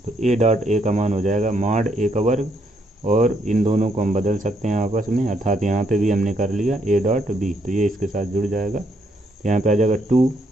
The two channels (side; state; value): both; normal; correlation 0.74